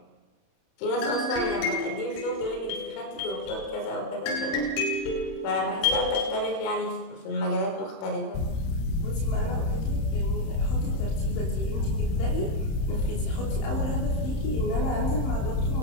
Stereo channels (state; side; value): late; right; 31 ms